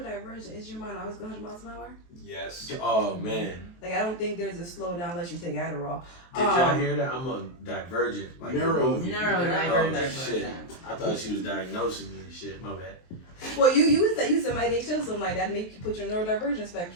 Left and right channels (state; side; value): late; right; 23 ms